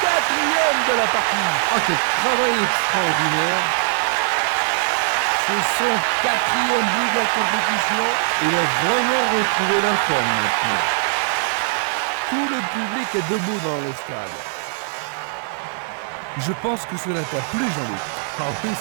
4e de la partie. Ah, quel travail extraordinaire. C'est son 4e but de la compétition. Il a vraiment retrouvé la forme maintenant. Tout le public est debout dans le stade. Je pense que cela t'a plu, Jean-Luc. Ah oui,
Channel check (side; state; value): left; silent; digital silence